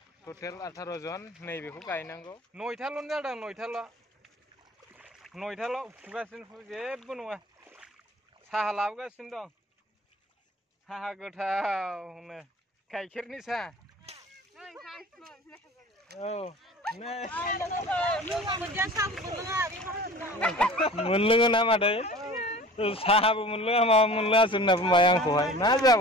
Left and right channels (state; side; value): normal; both; correlation 0.42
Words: टटेल 18 জন नैबेखौ गायनांगौ 9थाल' जादों 9थाल' फुगासिनो जेबो नङा साहा लाबोगासिनो दं साहा गोथावनो गाइखेरनि साहा औ नै मोनलोङो ना मादै साहाबो मोनलोङा माबा मोनलोङासो होनना बुंबाय आंखौहाय मा